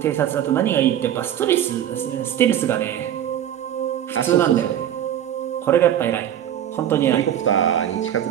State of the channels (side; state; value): left; quieter; 10.6 dB